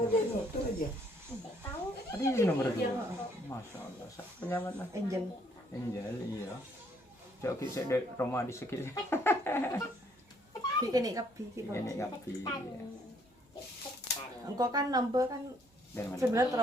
itu aja. Tahu tadi yang nomor 2 masya Allah penyaman lah angel Angel iya coba kita dari rumah di sekitar ini kapi ini kapi engkau kan nambah kan dari mana sebenarnya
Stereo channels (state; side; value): normal; both; correlation 0.66